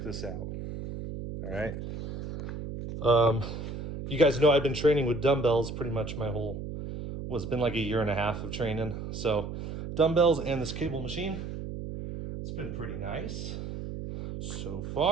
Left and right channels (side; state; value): right; noise; hum, 7 dB below the sound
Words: this out. All right. You guys know I've been training with dumbbells pretty much it's been like a year and a half of training. So dumbbells and this cable machine, it's been pretty nice so